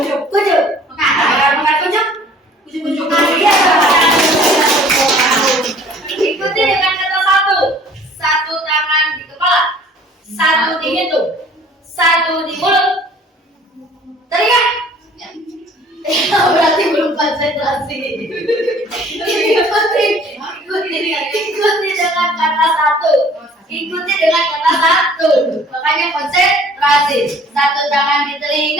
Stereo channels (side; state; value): both; normal; correlation 0.53